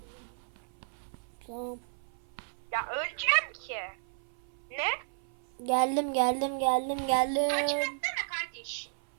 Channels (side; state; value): left; silent; 56 dB below the other